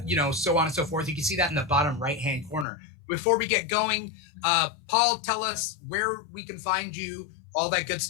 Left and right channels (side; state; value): right; drops out; at 2.7 s